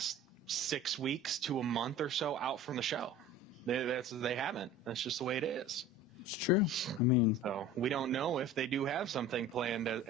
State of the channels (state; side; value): normal; both; correlation 0.40